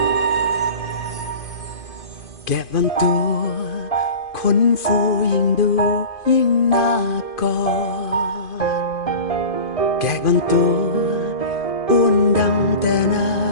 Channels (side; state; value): right; late; 2.5 ms